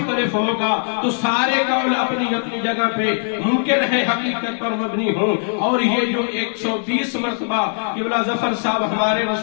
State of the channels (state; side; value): silent; right; 66 dB below the other